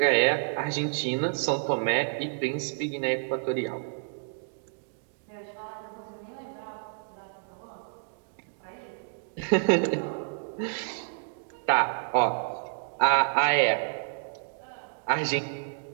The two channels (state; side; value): silent; left; digital silence